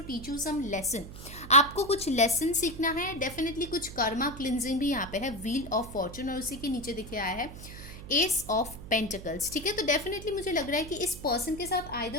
teach you some lesson. आपको कुछ लेसन सीखना है, डेफिनेटली कुछ कर्मा क्लिनजिंग भी यहाँ पे है। व्हील ऑफ फॉर्चून और उसी के नीचे दिखे आया है एस ऑफ पेंटिकल्स, ठीक है। तो डेफिनेटली मुझे लग रहा है कि इस पर्सन के साथ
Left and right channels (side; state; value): right; noise; hum, 13 dB below the sound